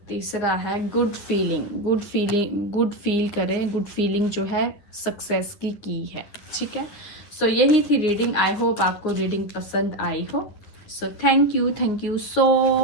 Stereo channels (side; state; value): right; late; 10 ms